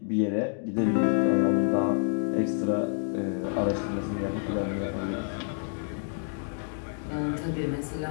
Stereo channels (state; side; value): silent; right; 58 dB below the other